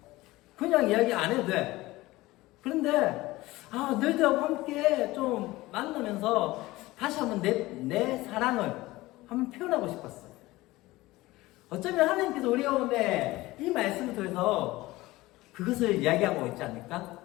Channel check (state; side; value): quieter; right; 19.1 dB